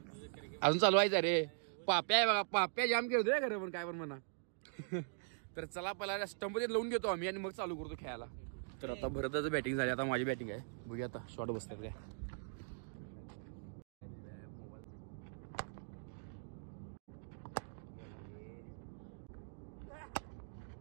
अजून चालू व्हायचं रे. पाप्या आहे बघा, पाप्या जाम खेळतोय खरं, पण काय पण म्हणा. तर चला पहिला स्टंप मध्ये लावून घेतो आम्ही आणि मग चालू करतो खेळायला. तर आता भरतच बॅटिंग झाली, आता माझी बॅटिंग आहे. बघूया आता शॉट बसतात काय.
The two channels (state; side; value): silent; left; digital silence